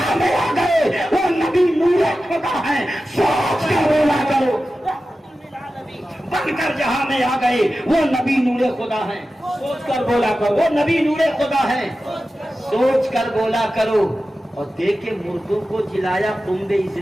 میں آ گئے وہ نبی نور خدا ہیں، سوچ کر بولا کرو، بن کر جہاں میں آ گئے وہ نبی نور خدا ہیں، سوچ کر بولا کرو، وہ نبی نور خدا ہیں، سوچ کر بولا کرو۔ اور دیکھے مردوں کو جلایا تمبے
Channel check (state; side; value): normal; both; correlation 0.94